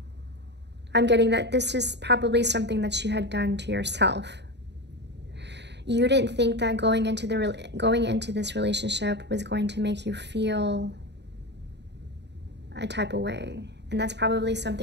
getting that this is probably something that you had done to yourself. You didn't think that going into this relationship was going to make you feel a type of way. And that's probably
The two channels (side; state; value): left; late; 0.50 ms